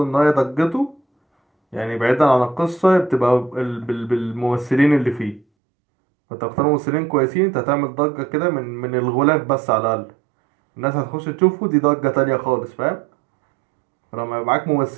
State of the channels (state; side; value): drops out; left; at 5.5 s